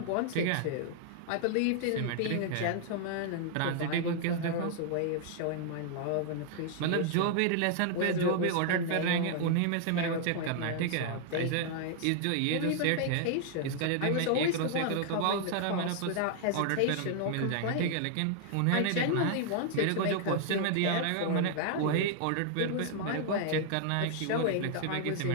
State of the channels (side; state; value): both; different; correlation 0.00